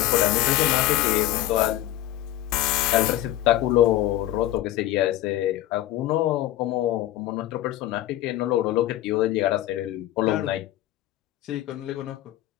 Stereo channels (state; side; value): quieter; right; 14.2 dB